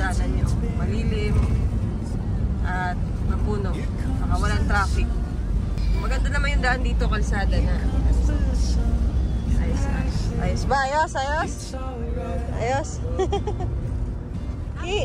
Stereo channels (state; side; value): identical; both; correlation 1.00